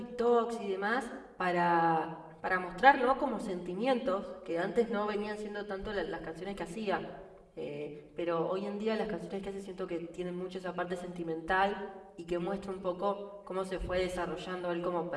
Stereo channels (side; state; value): both; identical; correlation 1.00